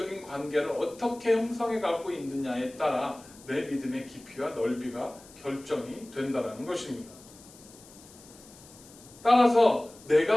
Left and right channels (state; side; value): noise; left; hiss, 22 dB below the sound